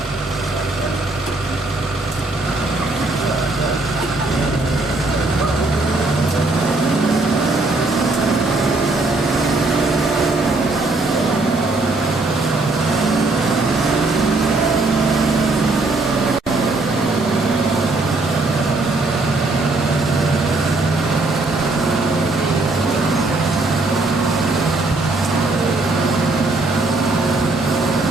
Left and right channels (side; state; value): left; quieter; 3.1 dB